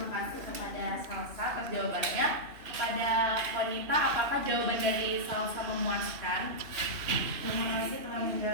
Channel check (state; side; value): late; left; 3.0 ms